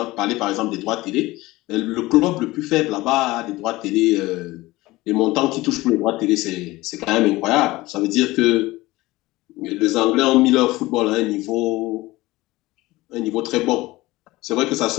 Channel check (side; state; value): right; quieter; 19.4 dB